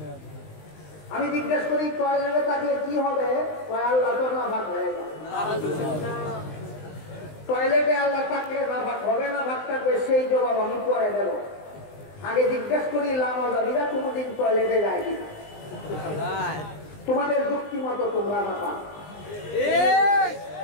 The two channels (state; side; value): late; right; 20 ms